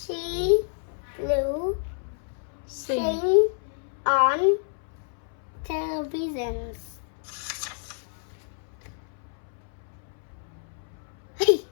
will Sing. sing on television. Hey,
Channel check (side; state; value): right; silent; 59 dB below the other